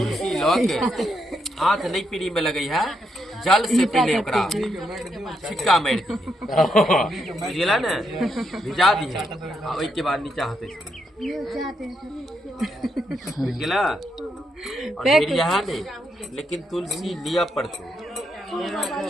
हाथ नहीं पीढ़ी में लगी है, जल से पहले ओकरा छिक्का मार दी बुझला ने, भिजा दी है और के बाद नीचा हाथे बुझला। और फिर यहाँ नहीं, लेकिन तुलसी लिया पड़तो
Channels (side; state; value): both; normal; correlation 0.80